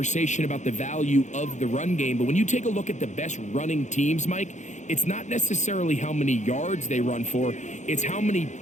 about the value of the run game, but when you take a look at the best running teams, Mike, it's not necessarily how many yards they run for, it's how many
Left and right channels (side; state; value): right; late; 0.35 ms